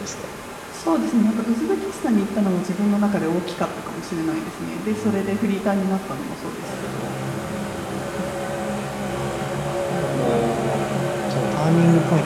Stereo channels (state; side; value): identical; both; correlation 1.00